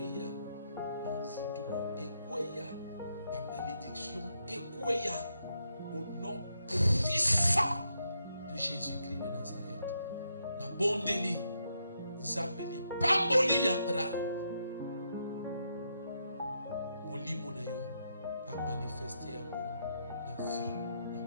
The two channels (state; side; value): inverted; both; correlation -0.79